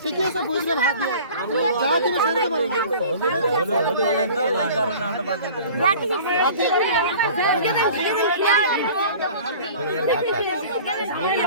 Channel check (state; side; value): inverted; both; correlation -0.44